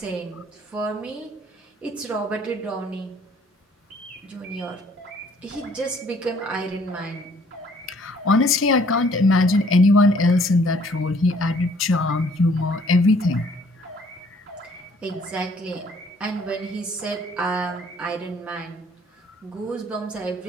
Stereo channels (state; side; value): normal; both; correlation 0.60